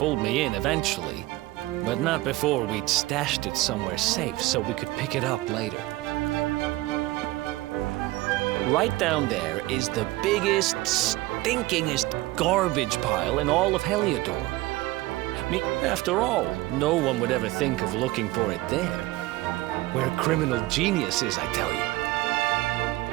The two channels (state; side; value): quieter; left; 18.8 dB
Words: me in eventually, but not before we'd stashed it somewhere safe so we could pick it up later. Right down there is the biggest, stinkingest garbage pile in all of Heliodor. I mean, after all, no one would ever think of looking for it there. Where criminal genius is, I tell you.